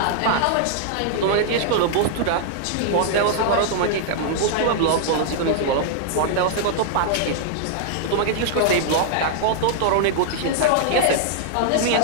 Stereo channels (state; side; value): different; both; correlation -0.01